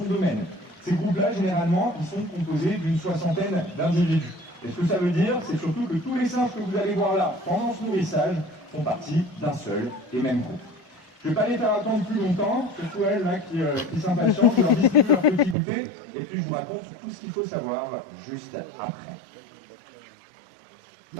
domaine. Ces groupes-là, généralement, ils sont composés d'une 60aine d'individus. Et ce que ça veut dire, c'est surtout que tous les singes que vous allez voir là, pendant ce nourrissage, font partie d'un seul et même groupe. Je ne vais pas les faire attendre plus longtemps, surtout elles là, qui s'impatientent, je leur distribue leur petit goûter, et puis je vous raconte tout ce qu'il faut savoir juste après.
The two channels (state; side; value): drops out; left; at 15.6 s